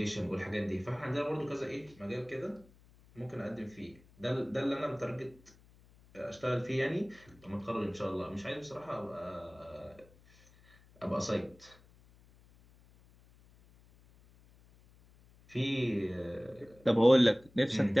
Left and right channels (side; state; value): left; noise; hum, 27 dB below the sound